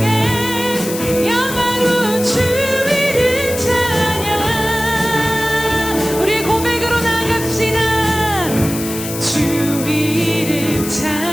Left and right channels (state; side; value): noise; left; hiss, 8 dB below the sound